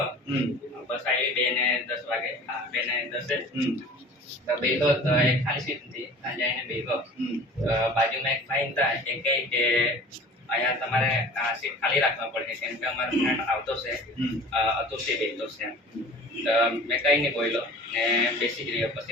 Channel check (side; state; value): both; normal; correlation 0.42